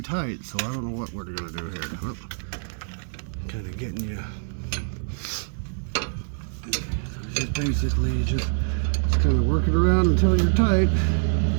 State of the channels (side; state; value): left; silent; 62 dB below the other